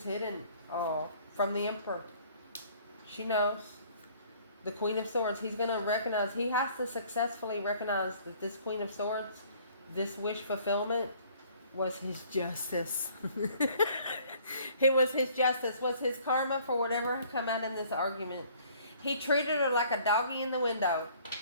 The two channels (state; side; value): inverted; both; correlation -0.57